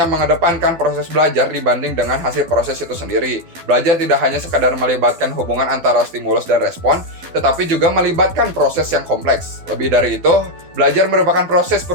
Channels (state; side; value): late; left; 12 ms